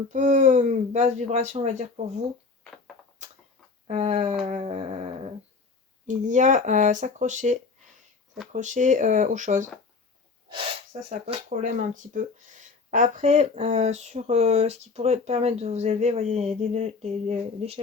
vibration, on va dire, pour vous. il y a s'accrocher aux choses. Ça pose problème un petit peu. Après, sur ce qui pourrait permettre de vous élever, vous voyez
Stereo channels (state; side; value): quieter; right; 4.4 dB